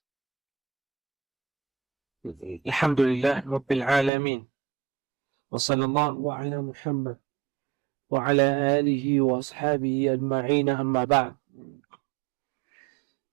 الحمد لله رب العالمين، وصلى الله على محمد وعلى آله وأصحابه أجمعين، أما بعد.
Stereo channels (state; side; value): drops out; left; at 4.1 s